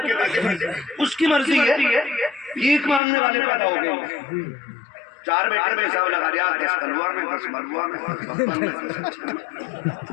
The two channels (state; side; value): drops out; right; at 3.0 s